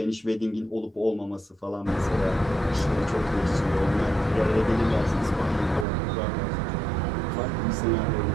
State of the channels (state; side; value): drops out; left; at 5.9 s